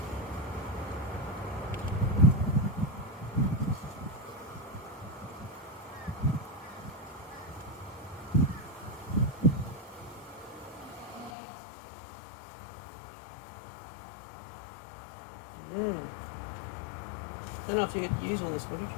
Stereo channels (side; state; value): right; drops out; at 11.3 s